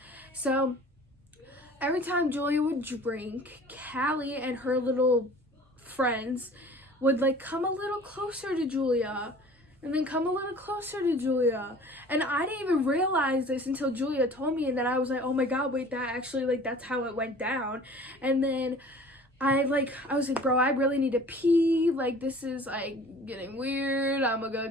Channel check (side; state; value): both; normal; correlation 0.46